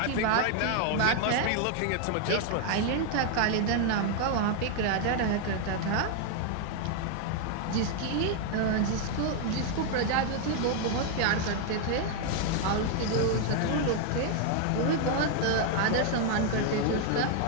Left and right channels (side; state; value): both; different; correlation 0.00